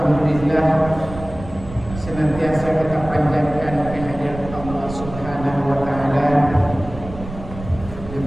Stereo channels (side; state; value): right; noise; rumble, 12 dB below the sound